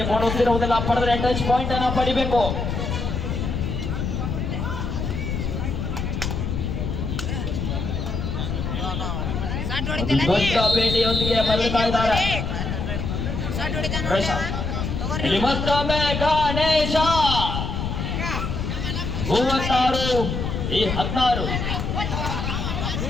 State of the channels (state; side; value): noise; left; rumble, 2 dB below the sound